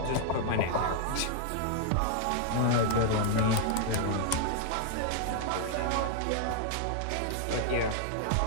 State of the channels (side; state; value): both; different; correlation -0.01